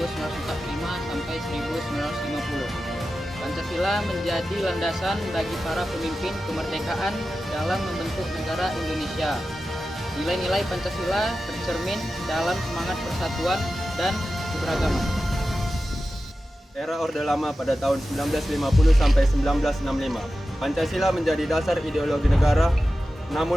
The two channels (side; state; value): both; normal; correlation 0.93